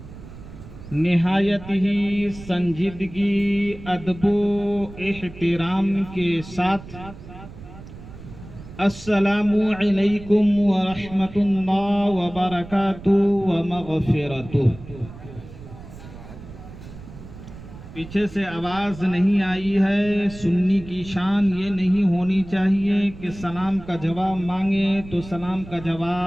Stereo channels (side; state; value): right; noise; rumble, 16 dB below the sound